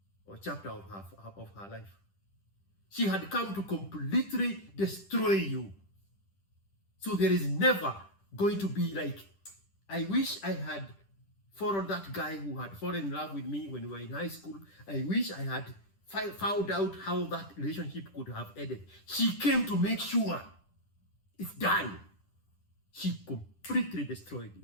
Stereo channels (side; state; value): right; late; 10 ms